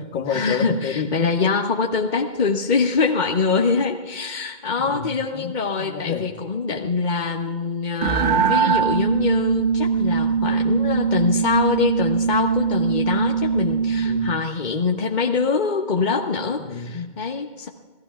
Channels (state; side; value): late; right; 2.2 ms